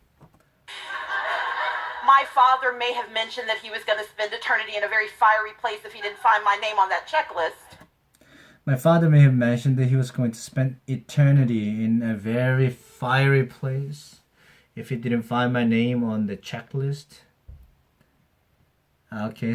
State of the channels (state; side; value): identical; both; correlation 1.00